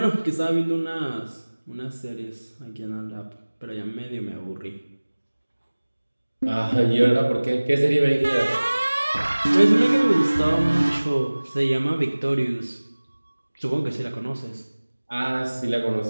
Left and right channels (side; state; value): both; inverted; correlation -1.00